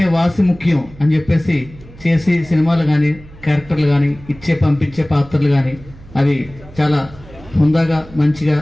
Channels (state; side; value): noise; right; hum, 20 dB below the sound